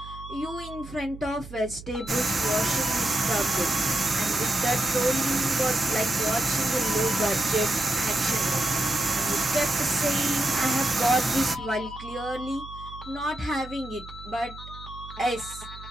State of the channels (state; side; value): noise; right; hum, 15 dB below the sound